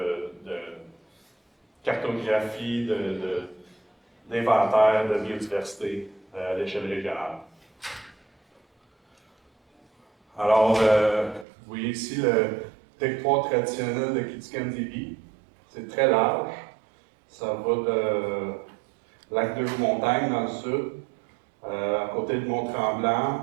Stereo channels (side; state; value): left; drops out; at 11.5 s